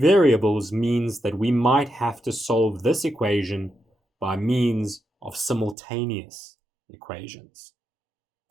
means that we might have to solve this equation by means of simultaneous equations.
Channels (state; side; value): drops out; left; at 5.8 s